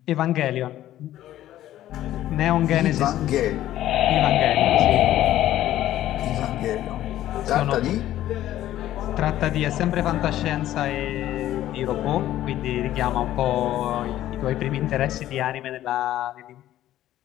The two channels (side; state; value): right; quieter; 13.3 dB